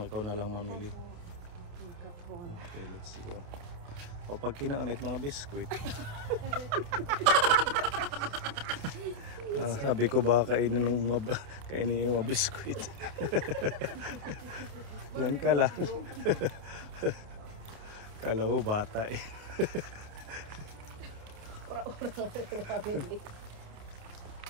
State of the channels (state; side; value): late; left; 28 ms